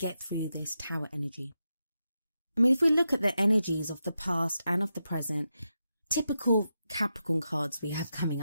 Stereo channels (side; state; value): both; inverted; correlation -0.88